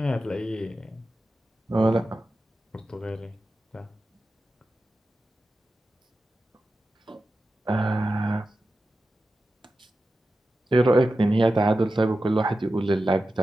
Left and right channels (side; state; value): both; normal; correlation 0.92